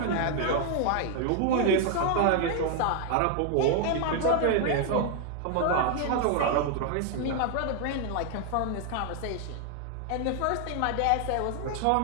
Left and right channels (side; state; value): both; different; correlation 0.00